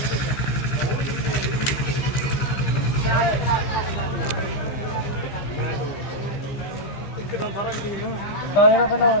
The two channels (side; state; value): right; late; 15 ms